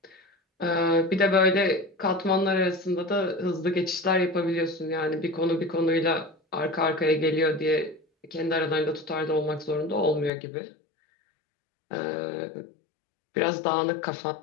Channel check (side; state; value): right; drops out; at 10.3 s